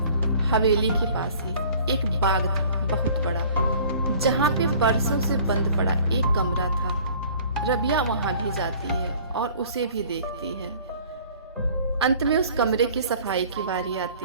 हवेली के पास ही एक बाग था बहुत बड़ा, जहाँ पे बरसों से बंद पड़ा एक कमरा था। रबिया वहां भी जाती है और उसे भी देखती है। अंत में उस कमरे की सफाई की बारी आती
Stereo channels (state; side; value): inverted; both; correlation -0.50